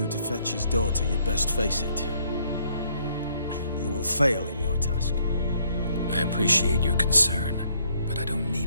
to fetch his daughter, you'd best face it. You will fail in your task. I appreciate your concern, but I don't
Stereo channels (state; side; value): inverted; both; correlation -0.67